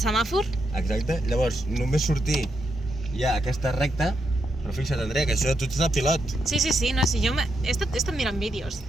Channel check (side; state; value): both; normal; correlation 0.82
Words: semàfor. Exacte. Llavors, només sortir ja aquesta recta. Però fixa't, Andrea, que això tu ets el pilot. Sí, no, sí, jo he estat mirant vídeos